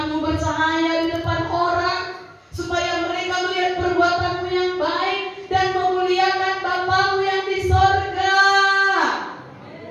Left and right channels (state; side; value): identical; both; correlation 1.00